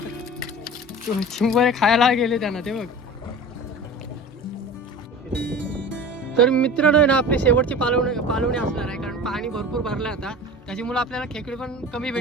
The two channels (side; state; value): both; normal; correlation 0.36